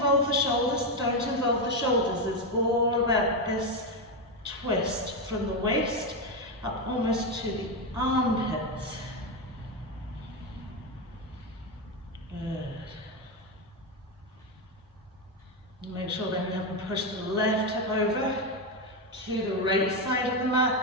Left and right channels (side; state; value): both; normal; correlation 0.09